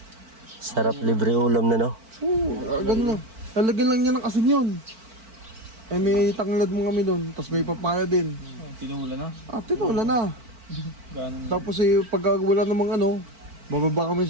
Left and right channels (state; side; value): late; left; 4.5 ms